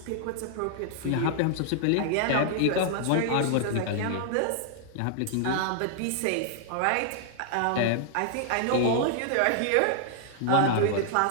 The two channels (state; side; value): different; both; correlation -0.01